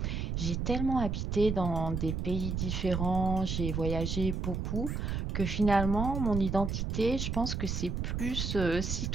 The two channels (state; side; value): noise; right; rumble, 2 dB below the sound